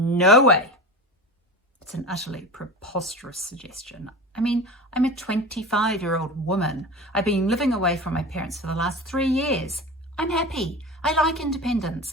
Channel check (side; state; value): both; normal; correlation 0.30